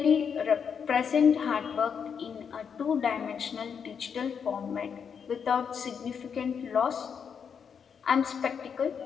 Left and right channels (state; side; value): quieter; right; 6.9 dB